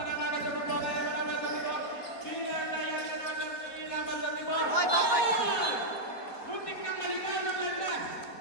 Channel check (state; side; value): late; right; 4.5 ms